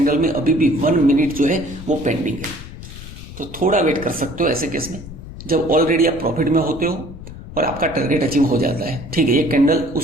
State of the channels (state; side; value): noise; left; rumble, 13 dB below the sound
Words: में अभी भी 1 मिनट जो है वो पेंडिंग है। तो थोड़ा वेट कर सकते हो ऐसे केस में, जब ऑलरेडी आप प्रॉफिट में होते हो और आपका टारगेट अचीव हो जाता है। ठीक है, ये कैंडल